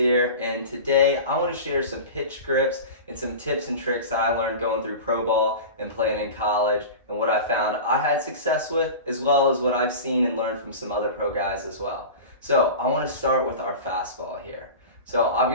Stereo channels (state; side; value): inverted; both; correlation -0.31